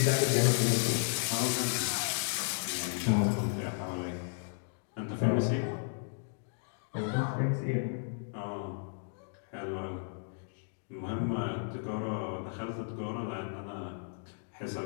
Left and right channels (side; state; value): right; silent; digital silence